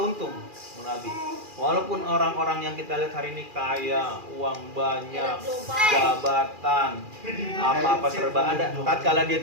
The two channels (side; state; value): left; late; 2.4 ms